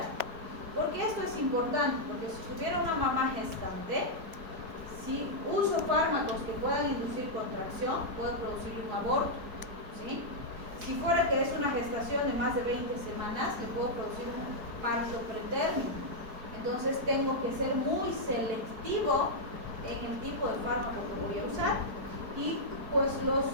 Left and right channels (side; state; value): left; late; 4.7 ms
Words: ¿Por qué esto es importante? Porque si tuviera una mamá gestante, si uso fármacos que puedan inducir contracción, puedo producir un aborto, ¿sí? Si fuera que es una gestación de más de 20 semanas, le puedo producir un parto pretérmino. Entonces tengo que ser muy selectivo en el tipo de fármaco que voy a usar. Y pues los